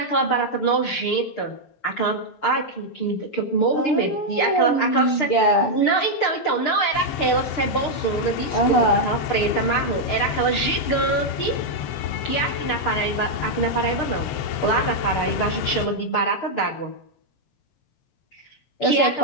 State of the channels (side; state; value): right; late; 6.6 ms